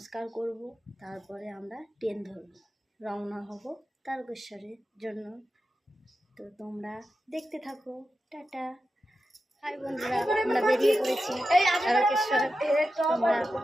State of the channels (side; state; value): both; normal; correlation 0.91